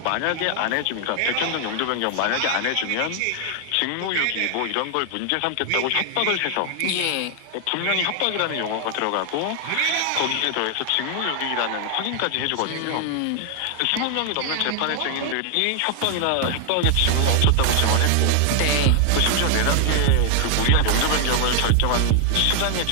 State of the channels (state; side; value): different; both; correlation 0.00